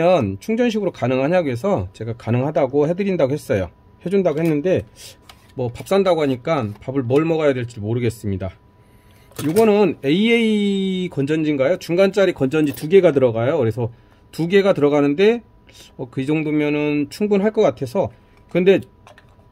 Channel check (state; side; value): identical; both; correlation 1.00